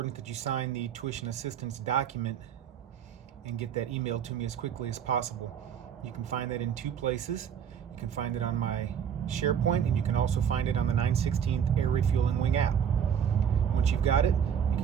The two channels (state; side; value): quieter; left; 8.2 dB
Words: that you sign the tuition assistance document and get that emailed to me as quickly as possible. You can find that in two places. You can find it on my SharePoint, and you can also find it on the 9/16 Air Refueling Wing app. Once you've got it, you